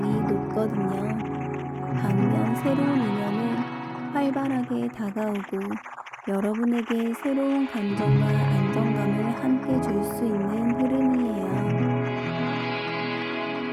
높거든요. 반면 새로운 인연은 활발하게 다가오고 여러분에게 새로운 감정과 안정감을 함께 줄 수 있는 흐름이에요.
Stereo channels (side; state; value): both; identical; correlation 1.00